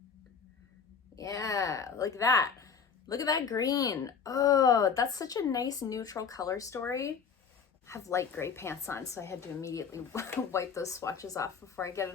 Yeah, like that. Look at that green. Oh, that's such a nice neutral color story. I have light gray pants on, so I had to immediately wipe those swatches off before I get it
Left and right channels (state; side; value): quieter; right; 6.3 dB